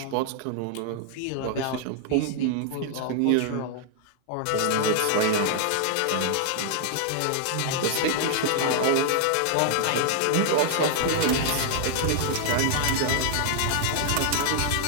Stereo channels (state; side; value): different; both; correlation -0.01